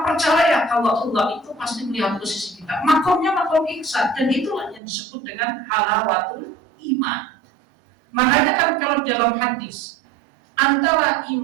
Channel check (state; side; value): drops out; left; at 4.8 s